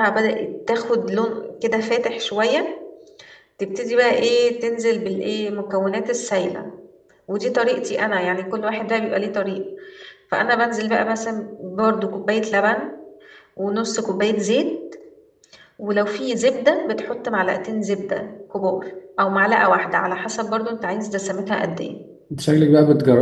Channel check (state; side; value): identical; both; correlation 1.00